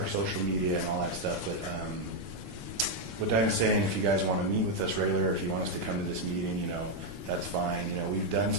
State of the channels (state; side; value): late; left; 11 ms